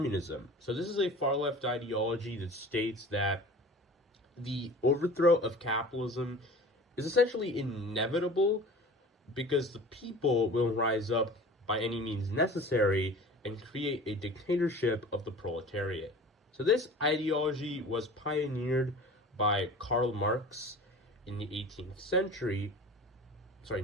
So this is a far-left ideology that states that the overthrow of capitalism is essentially inevitable because the people will rise up by any means necessary and create a dictatorship of the proletariat. So this ideology was pioneered by Karl Marx in the 19th century,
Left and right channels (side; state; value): both; normal; correlation 0.40